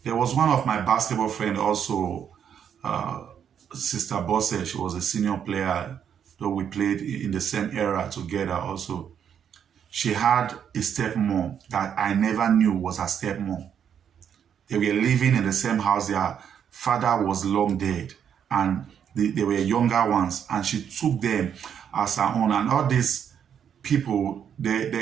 There was one of my basketball friends also, Sister Bosse. She was a senior player, though we played in the same era together also. She had a stepmom that I never knew was her stepmom. They were living in the same house. Their father was long dead, and they were younger ones, and she took them as her own. And all these people,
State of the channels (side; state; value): left; quieter; 8.4 dB